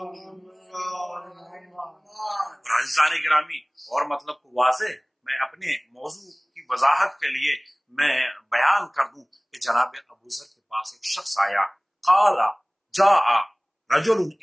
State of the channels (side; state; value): both; identical; correlation 1.00